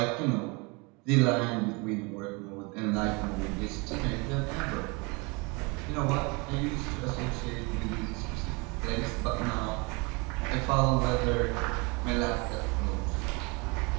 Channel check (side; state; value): left; quieter; 28.8 dB